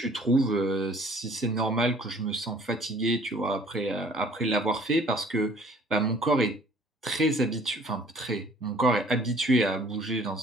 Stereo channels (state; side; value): normal; both; correlation 0.55